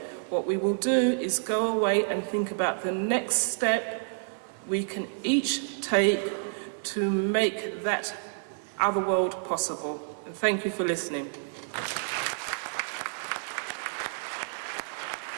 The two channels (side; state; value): left; silent; 58 dB below the other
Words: What we will do is go away and think about the next step we can each take to make that other world possible. And thank you for listening.